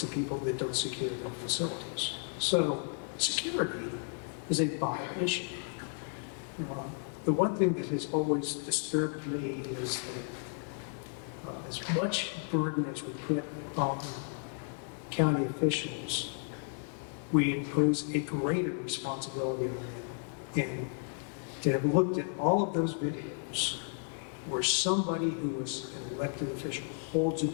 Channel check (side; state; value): right; silent; 56 dB below the other